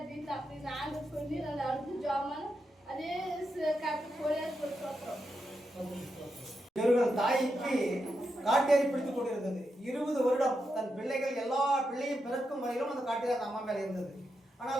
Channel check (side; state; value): both; normal; correlation 0.85